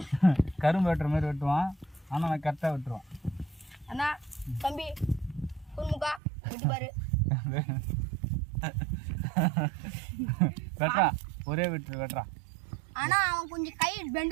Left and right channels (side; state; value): left; drops out; at 6.2 s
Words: கரும்பு வெட்டுற மாதிரி வெட்டுவான். ஆனால் நான் கரெக்டாக வெட்டுருவான். அண்ணா தம்பி குறுமுக்கா வெட்டி பாரு. வெட்டுறா ஒரே வெட்டுறா. ஆனா அவன் கொஞ்சம் கை